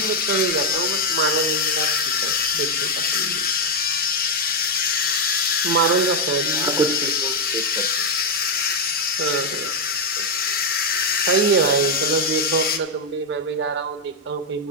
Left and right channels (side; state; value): both; normal; correlation 0.01